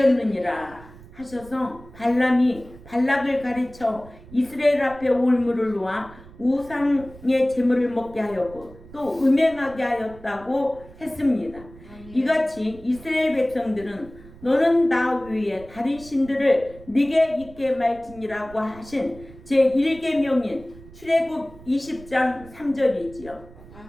하셔서 발람이 발락을 가르쳐 이스라엘 앞에 올무를 놓아 우상의 재물을 먹게 하였고 또 음행하게 하였다고 했습니다. 이같이 이스라엘 백성들은 너는 나 위에 다른 신들을 네게 있게 말지니라고 하신 제1계명인 출애굽 20장 3절이지요.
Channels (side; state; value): right; noise; rumble, 20 dB below the sound